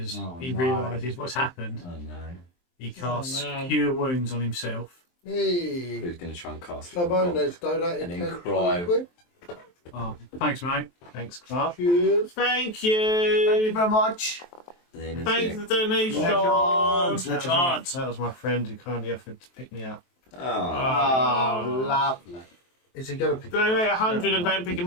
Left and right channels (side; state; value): right; late; 23 ms